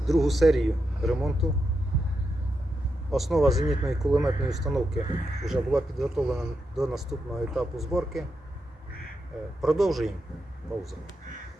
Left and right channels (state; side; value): normal; both; correlation 0.85